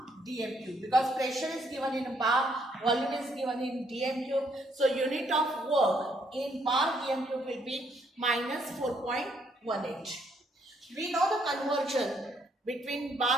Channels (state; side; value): normal; both; correlation 0.70